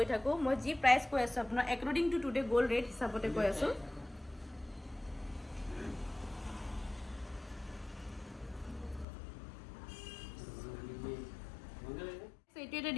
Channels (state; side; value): drops out; right; at 9.1 s